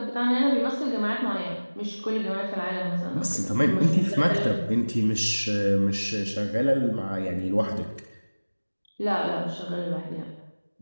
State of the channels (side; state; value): both; inverted; correlation -1.00